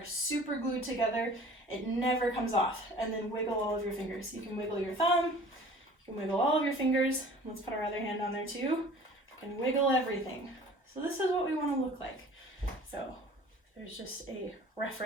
super glued together. It never comes off. And then wiggle all of your fingers. You can wiggle your thumb, you can wiggle all of your fingers. Let's put our other hand on there too. You can wiggle everything. So this is what we want to look like. So there's just a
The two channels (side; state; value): both; normal; correlation 0.47